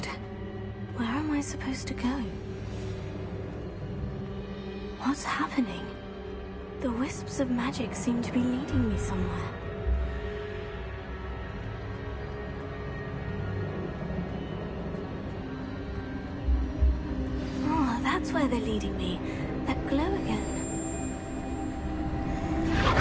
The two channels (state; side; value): identical; both; correlation 1.00